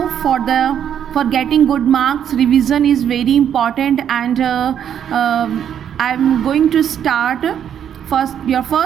for getting good marks, revision is very important, and I'm going to start your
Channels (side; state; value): left; quieter; 9.1 dB